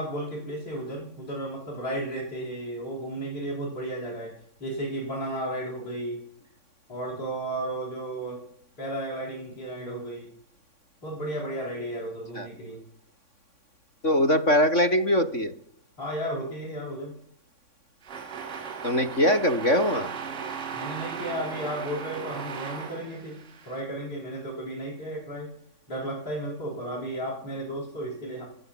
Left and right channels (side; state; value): right; late; 3.6 ms